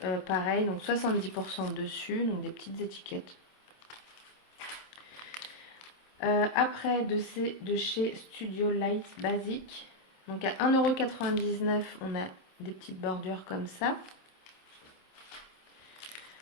Pareil, donc 70% dessus. Donc, des petites étiquettes. Après, de chez Studio Light Basic. Donc, à 1,99 €, on a des petites bordures comme ça.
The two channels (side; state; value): right; late; 27 ms